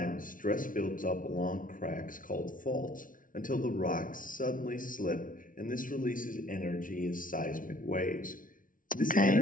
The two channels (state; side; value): late; right; 0.39 ms